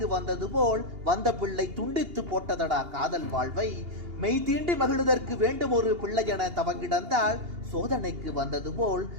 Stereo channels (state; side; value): late; left; 2.8 ms